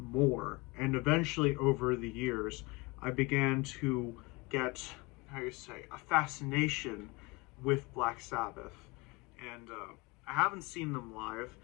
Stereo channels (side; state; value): right; quieter; 25.4 dB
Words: And eventually, over the years, I began to get, how you say, a fascination with Black Sabbath. And I haven't seen them live.